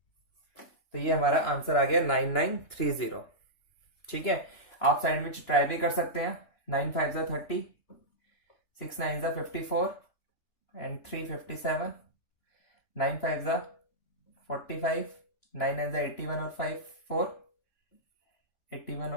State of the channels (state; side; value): late; right; 2.9 ms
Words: तो ये हमारा आंसर आ गया 9930। ठीक है, आप साइड में ट्राई भी कर सकते हैं। 9 5 30, 6 9 54 एंड 3 57, 9 5 45, 9 9 81 और 5 4, 81